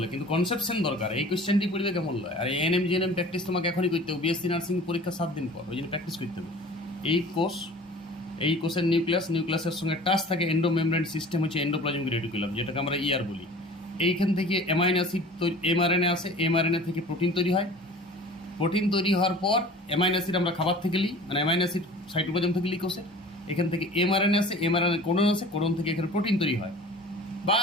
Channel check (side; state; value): both; normal; correlation 0.44